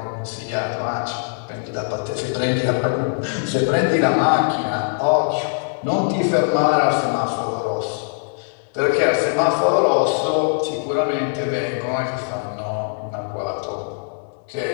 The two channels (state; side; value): silent; right; digital silence